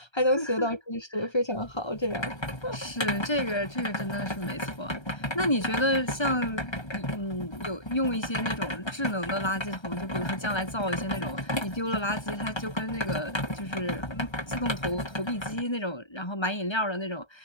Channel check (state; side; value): late; right; 1.3 ms